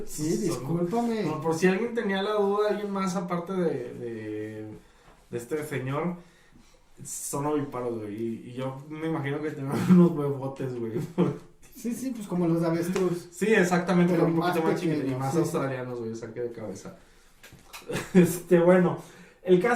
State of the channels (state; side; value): identical; both; correlation 1.00